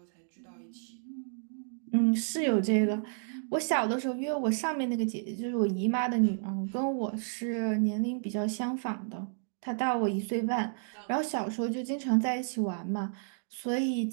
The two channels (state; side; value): silent; left; digital silence